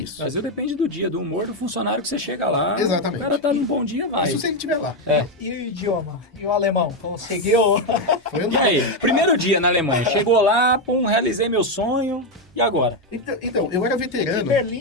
Brasil depende do dia, do humor do funcionário que você chega lá. Exatamente. O cara tá num bom dia, vai. Isso se ele estiver lá. E o idioma? E o alemão? Conseguiu? Foi E aí? Primeiro dia na Alemanha. Chegou lá, realizei meu sonho. E agora? Então, eu era veterano. E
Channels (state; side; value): normal; both; correlation 0.06